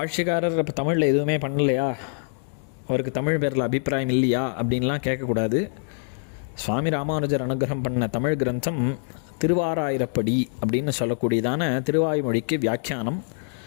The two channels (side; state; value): right; silent; digital silence